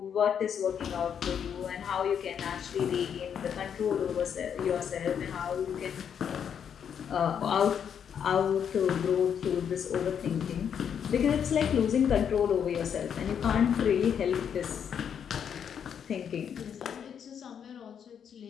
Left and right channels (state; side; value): quieter; right; 8.0 dB